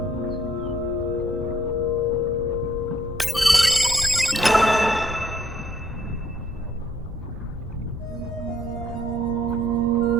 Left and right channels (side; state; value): both; normal; correlation 0.66